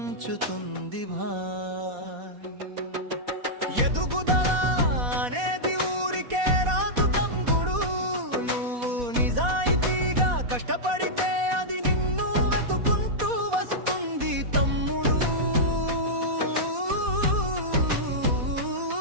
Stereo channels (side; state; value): left; late; 4.1 ms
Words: ఎదుగుదల అనేది ఊరికే రాదు తమ్ముడు, నువ్వు నిజాయితీగా కష్టపడితే అది నిన్ను వెతుకుంటూ వస్తుంది తమ్ముడు.